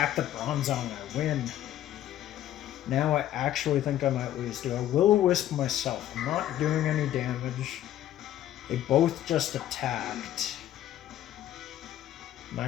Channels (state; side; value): quieter; right; 12.4 dB